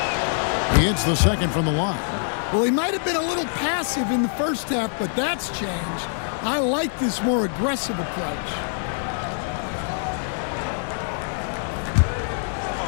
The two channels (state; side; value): silent; right; 62 dB below the other